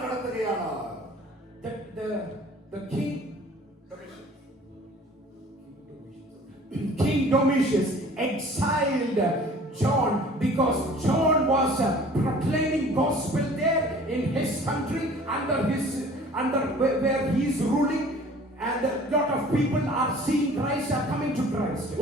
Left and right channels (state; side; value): normal; both; correlation 0.48